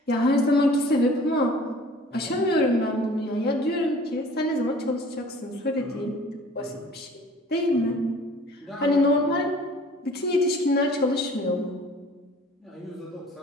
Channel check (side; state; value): both; normal; correlation 0.49